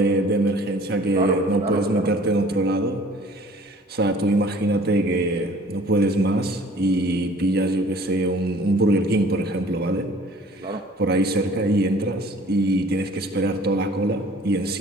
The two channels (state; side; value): normal; both; correlation 0.51